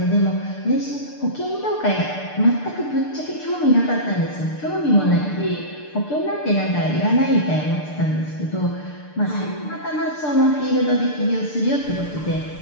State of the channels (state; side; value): late; right; 6.7 ms